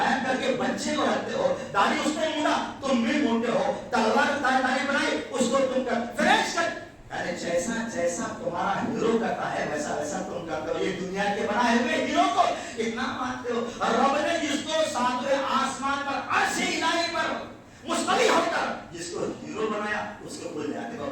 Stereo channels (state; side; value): identical; both; correlation 1.00